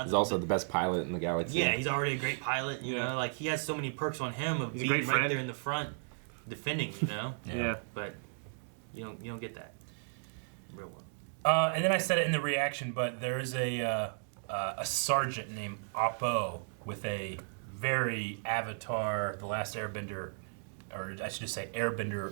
He's also the best pilot in the galaxy. Yeah, he's already a great pilot. You know, like he has so many perks on him of being right there in the front, defending. You know. But you don't get that real well. And then I said it in the reaction, but there is a sergeant named Oppo with a very Avatar, The Last Airbender, or I should just say Airbender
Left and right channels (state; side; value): silent; left; digital silence